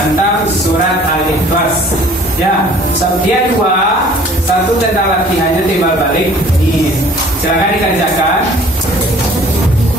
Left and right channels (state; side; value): normal; both; correlation 0.52